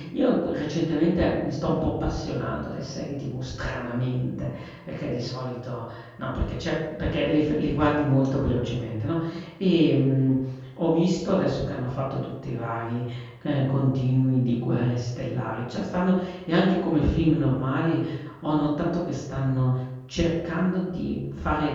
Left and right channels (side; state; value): both; identical; correlation 1.00